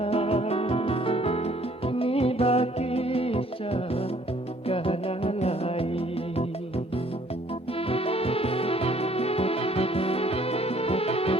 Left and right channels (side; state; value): both; normal; correlation 0.60